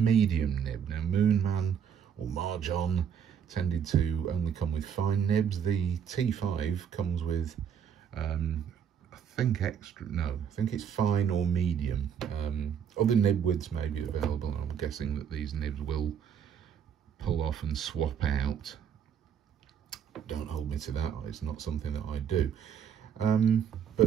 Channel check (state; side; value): quieter; left; 8.0 dB